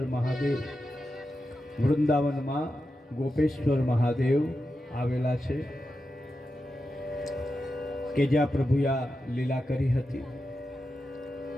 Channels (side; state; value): both; normal; correlation 0.89